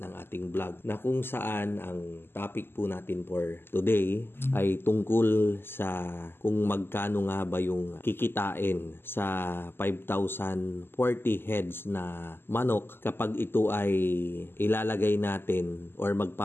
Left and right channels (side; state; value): right; late; 0.11 ms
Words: ating vlog na kung saan ang topic po natin for today ay tungkol sa kung magkano nga ba yung kikitain sa 5,040 heads na manok kapag ito ay ilalagay natin or